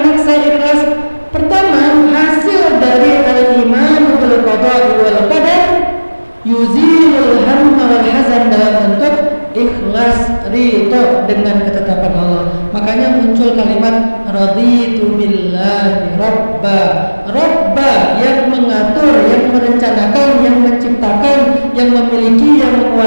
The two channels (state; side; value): inverted; both; correlation -1.00